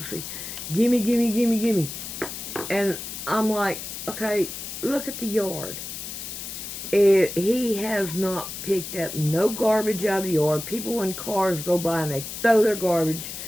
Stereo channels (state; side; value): noise; left; hiss, 8 dB below the sound